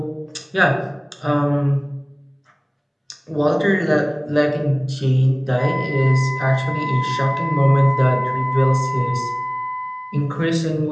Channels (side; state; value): both; identical; correlation 1.00